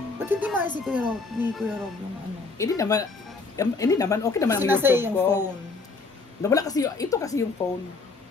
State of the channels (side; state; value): right; quieter; 4.0 dB